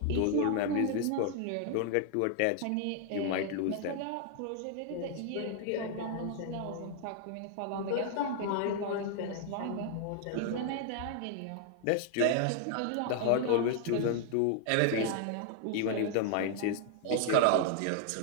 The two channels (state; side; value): different; both; correlation 0.00